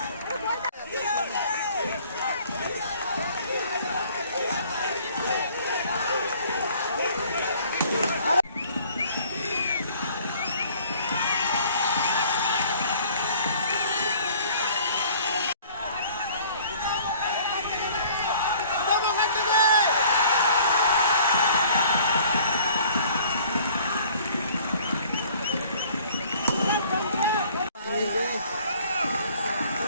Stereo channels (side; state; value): both; inverted; correlation -0.54